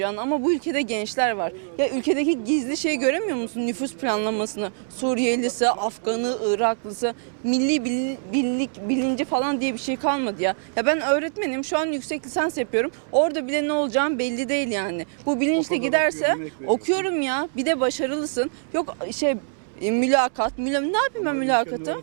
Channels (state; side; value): silent; left; digital silence